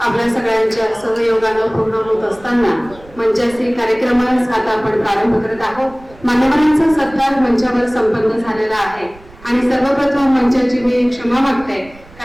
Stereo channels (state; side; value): noise; right; rumble, 23 dB below the sound